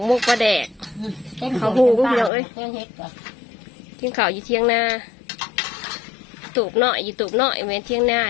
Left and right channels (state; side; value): drops out; right; at 2.3 s